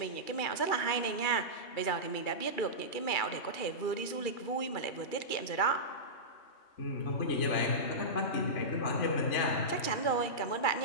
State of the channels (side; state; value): right; late; 2.4 ms